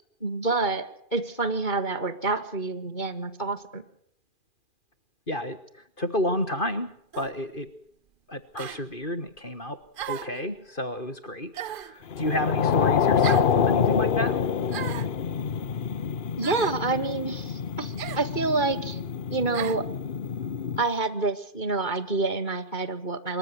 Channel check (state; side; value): late; right; 2.4 ms